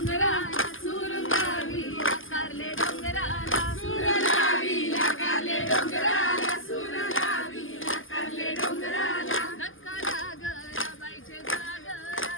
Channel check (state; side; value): late; right; 0.58 ms